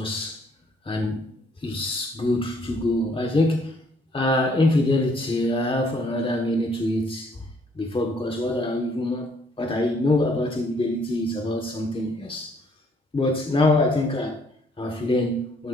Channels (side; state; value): both; normal; correlation 0.65